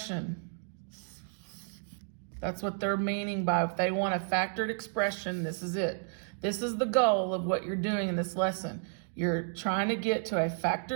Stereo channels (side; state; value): left; silent; 56 dB below the other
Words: That's what they're meaning by if they want a factored expression, this is it. This is the goal of what you're doing in this lesson. You're trying to get to a